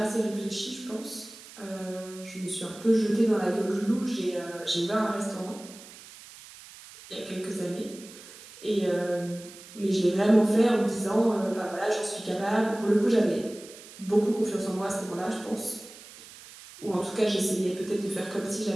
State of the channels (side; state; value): right; noise; hiss, 18 dB below the sound